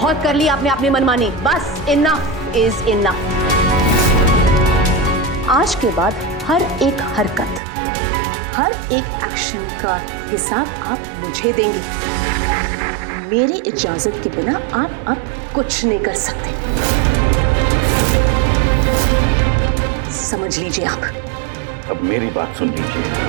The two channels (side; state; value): left; drops out; at 7.6 s